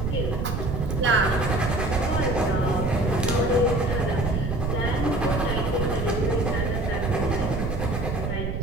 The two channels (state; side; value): noise; right; rumble, 1 dB below the sound